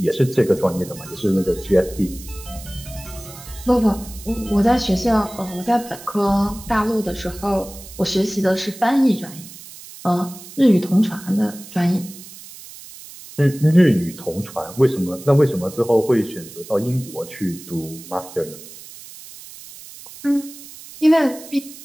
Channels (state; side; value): noise; right; hiss, 16 dB below the sound